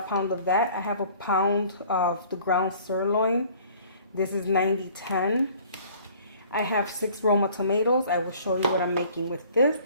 pound of that. I have a pound of the ground sirloin. This is 90-10. I have 6 Roma tomatoes. I will show you what I'm making with this.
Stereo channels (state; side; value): inverted; both; correlation -0.53